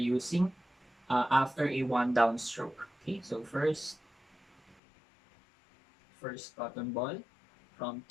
after a one down stroke. Okay, so first first cotton ball from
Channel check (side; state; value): right; drops out; at 4.8 s